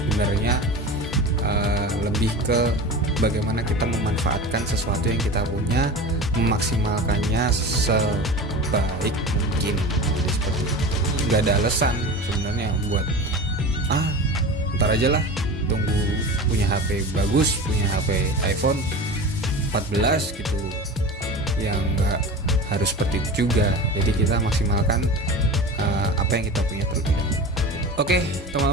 lebih ke bagaimana kita memanfaatkan sesuatu yang kita punya, memaksimalkannya sebaik mungkin. Jadi seperti itu. Nggak ada alasan sebenarnya buat ntar aja lah, tunggu punya HP bagus, punya HP iPhone 14 gitu, yang nggak harus seperti itu juga. Jadi kita maksimalkan apa yang kita punya terlebih dahulu. Oke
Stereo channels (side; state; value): both; normal; correlation 0.32